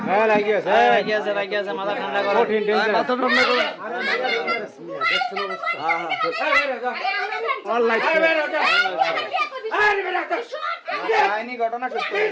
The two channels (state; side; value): identical; both; correlation 1.00